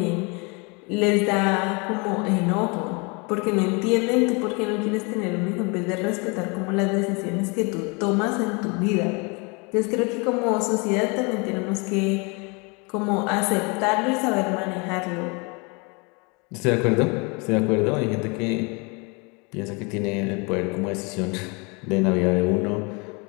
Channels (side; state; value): right; quieter; 30.6 dB